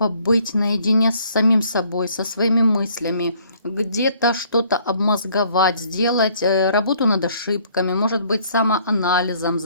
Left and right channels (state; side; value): inverted; both; correlation -0.62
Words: наедине с самим собой, со своими мыслями, где-то что-то обмозговать, сделать работу над ошибками, может быть, самоанализом